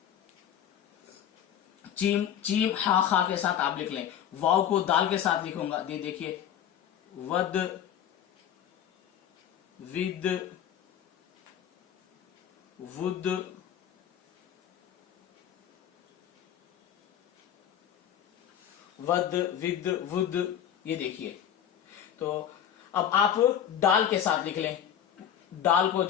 चीम, चीम हा खा के साथ आप लिख लें। वाव को दाल के साथ लिखूंगा, ये देखिए वद, विद, वुद, वद, विद, वुद, ये देखिए। तो अब आप डाल के साथ लिख लें। दाल को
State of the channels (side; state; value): right; quieter; 9.8 dB